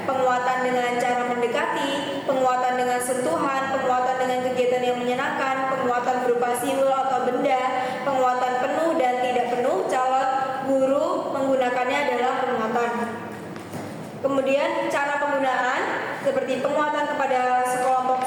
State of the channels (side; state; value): both; identical; correlation 1.00